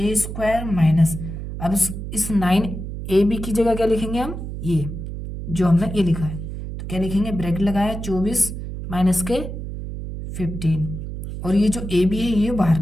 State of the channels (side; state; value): right; noise; hum, 7 dB below the sound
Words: माइनस, अब इस 9ab की जगह क्या लिखेंगे हम, ये जो हमने ये लिखा है। तो क्या लिखेंगे, ब्रैकेट लगाया 24 माइनस के 15, और ये जो ए बी है ये बाहर